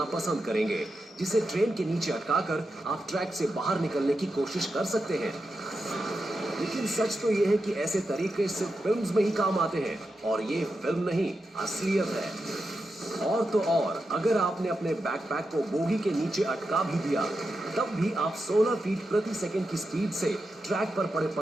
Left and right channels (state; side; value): normal; both; correlation 0.88